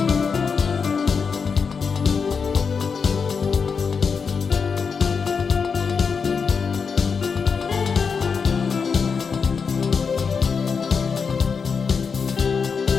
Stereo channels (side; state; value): right; quieter; 5.7 dB